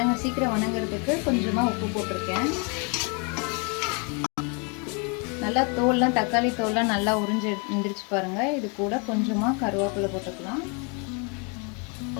சீக்கிரம் வணங்குறதுக்கு கொஞ்சமாக உப்பு போட்டிருக்கேன். நல்லா தோல்லாம், தக்காளி தோல்லாம் நல்லா உறிஞ்சு எழுந்திரிச்சு பாருங்கள். இது கூட கொஞ்சமாக கருவேப்பிலை போட்டுக்கலாம்.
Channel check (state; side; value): quieter; right; 34.8 dB